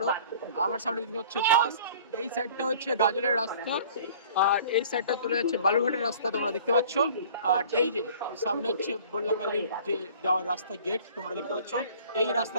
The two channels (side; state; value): both; inverted; correlation -0.49